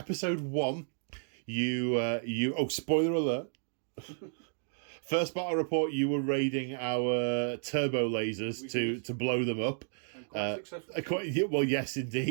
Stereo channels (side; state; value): left; silent; digital silence